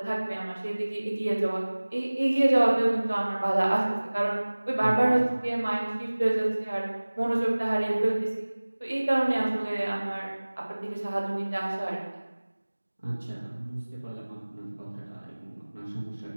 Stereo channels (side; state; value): both; inverted; correlation -1.00